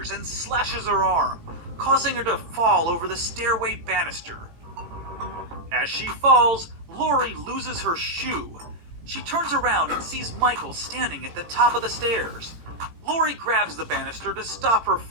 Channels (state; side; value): late; left; 18 ms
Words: and slashes her arm, causing her to fall over the stairway banister. As she falls, Lori loses her shoe. She turns around and sees Michael standing at the top of the stairs. Lori grabs the banister to stop her